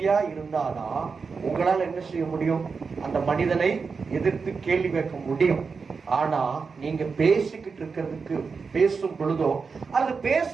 இருந்தாதான் உங்களால என்ன செய்ய முடியும், அந்த மனிதனை எதிர்த்து கேள்வி கேட்க முடியும். ஆனா நீங்க பேசிக்கிட்டு இருக்கிறதுக்கு பேசும் பொழுதோ அல்லது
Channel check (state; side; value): quieter; left; 5.1 dB